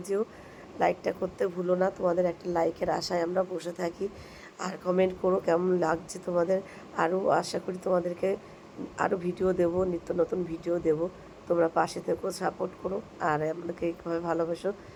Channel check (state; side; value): identical; both; correlation 1.00